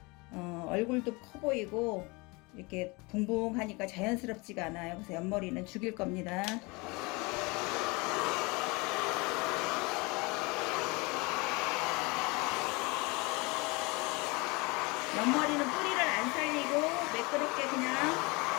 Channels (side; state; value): right; quieter; 26.6 dB